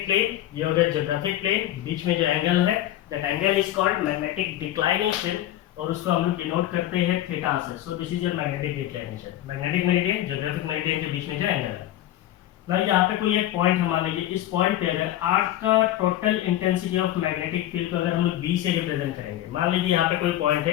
प्लेन, ये हो गया जियोग्राफिक प्लेन. बीच में जो एंगल है that angle is called magnetic declination, और उसको हम लोग डिनोट करते हैं थीटा से. सो this is your magnetic declination. Magnetic meridian geographic meridian के बीच में जो एंगल है. भाई यहाँ पे कोई एक पॉइंट हम मान लीजिए, इस पॉइंट पे अगर अर्थ का total intensity of magnetic field को अगर हम लोग बी से रिप्रेजेंट करेंगे, मान लीजिए यहाँ पे कोई पॉइंट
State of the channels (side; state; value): right; quieter; 13.4 dB